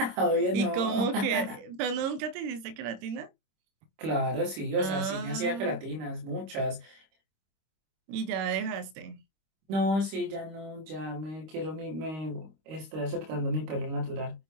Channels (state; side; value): late; left; 26 ms